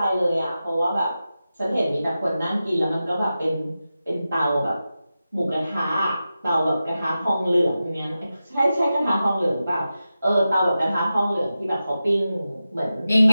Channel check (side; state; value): both; inverted; correlation -0.92